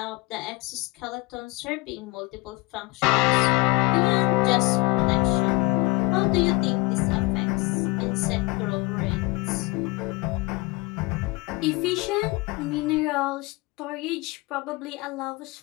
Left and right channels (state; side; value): quieter; right; 25.1 dB